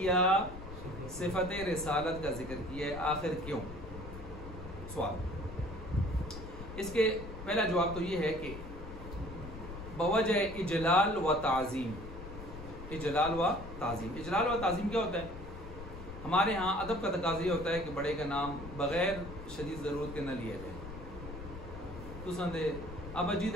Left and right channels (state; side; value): noise; left; rumble, 11 dB below the sound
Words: صفت رسالت کا ذکر کیا ہے. آخر کیوں؟ سوال. اس کے پہلا جواب تو یہ ہے کہ بوجہ اجلال و تعظیم. اجلال و تعظیم، اجلال و تعظیم کیا ہوتا ہے؟ ہمارے ہاں ادب کا تقاضا یہ ہوتا ہے کہ بڑے کا نام بغیر شدید ضرورت کے نہ لیا جائے. تو سندے اب اجید